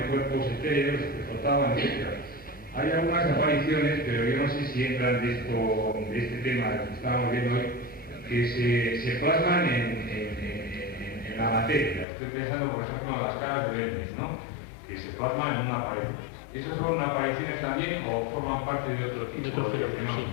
cuerpos etéreos que flotaban, etc. Hay algunas apariciones, pero yo no sé si entran de este tema que estábamos viendo hoy, que se plasman en la materia. Estoy pensando, por ejemplo, en las caras de Belmes, ¿no? Que se plasman en una pared. ¿Esos son apariciones también o forman parte de otro tipo de fenómeno?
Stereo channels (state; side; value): drops out; right; at 12.1 s